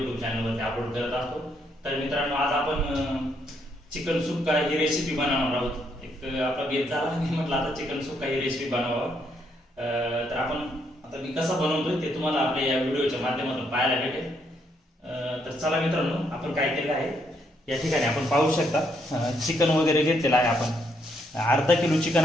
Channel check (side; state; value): both; normal; correlation 0.74